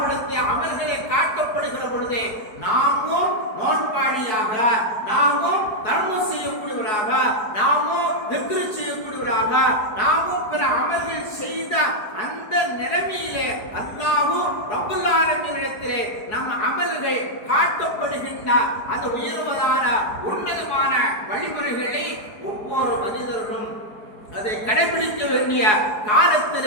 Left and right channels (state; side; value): late; right; 4.7 ms